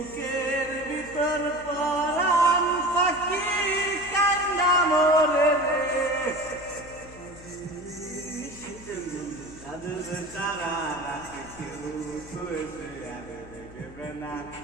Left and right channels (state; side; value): noise; left; hum, 19 dB below the sound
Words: ভিতর পরাণ পাখি কান্না মরে রে সাধুর তারা রাখে কেউ শুয়েছে আর দেখবে না